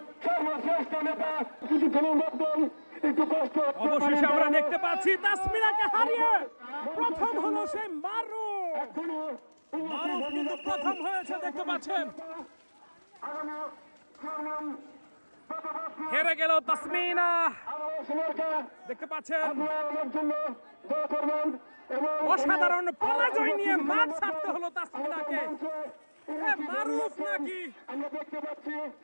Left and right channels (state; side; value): inverted; both; correlation -1.00